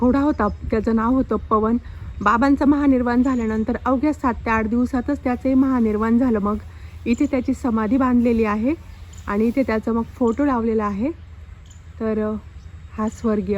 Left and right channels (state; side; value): identical; both; correlation 1.00